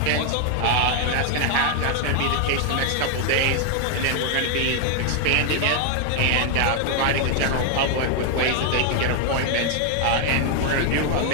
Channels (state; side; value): different; both; correlation 0.00